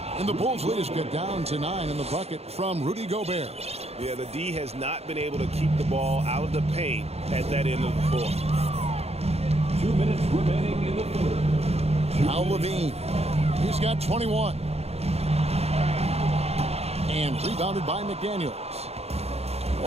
And the Bulls lead is get down to 9 in the bucket from Rudy Gobert. Yeah, the D has not been able to keep the ball out of the paint at that end of the court. 2 minutes remaining in the third. Now LaVine. He's got 21. And rebounded by McDaniels.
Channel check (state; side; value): late; left; 0.30 ms